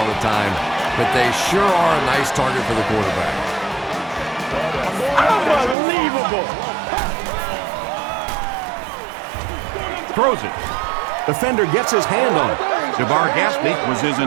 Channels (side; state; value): left; drops out; at 5.8 s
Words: the time, but they sure are a nice target for the quarterback. Unbelievable. Throws it. Defender gets his hand on it. Jabbar Gaspney was his